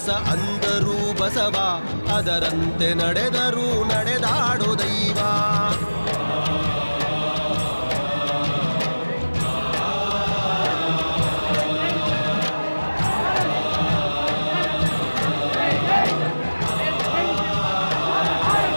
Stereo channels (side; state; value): both; inverted; correlation -1.00